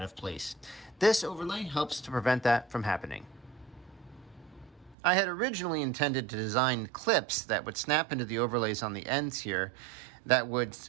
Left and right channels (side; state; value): left; drops out; at 5.0 s